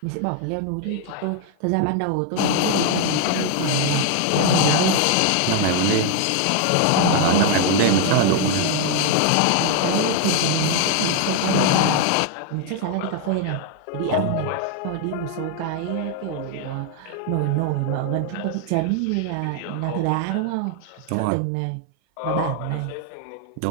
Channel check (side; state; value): both; different; correlation 0.01